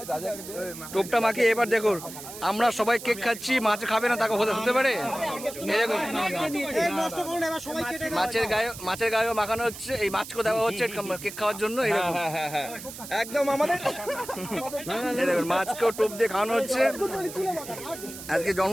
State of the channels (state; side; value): noise; right; hiss, 12 dB below the sound